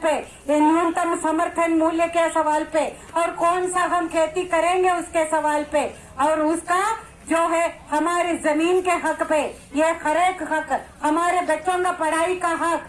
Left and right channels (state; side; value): identical; both; correlation 1.00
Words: पे, ये न्यूनतम समर्थन मूल्य के सवाल पे, और कौन सा हम खेती करेंगे उसके सवाल पे, और उसका जो है हमारी जमीन के हक पे, ये हर एक हक, हमारे बच्चों का पढ़ाई का हक,